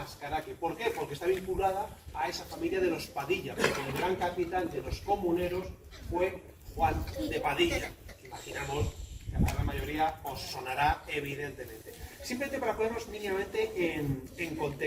¿Por qué? Porque está vinculada a esa familia de los Padilla, porque el gran capitán de los comuneros fue Juan de Padilla. Imaginamos que a la gran mayoría os sonará evidentemente. Simplemente para ponernos mínimamente en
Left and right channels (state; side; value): identical; both; correlation 1.00